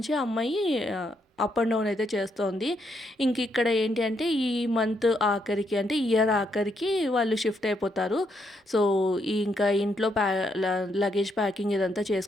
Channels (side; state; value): both; normal; correlation 0.76